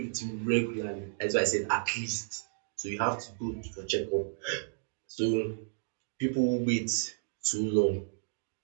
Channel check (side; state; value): left; silent; digital silence